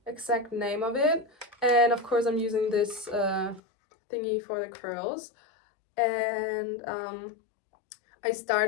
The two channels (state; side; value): drops out; right; at 3.6 s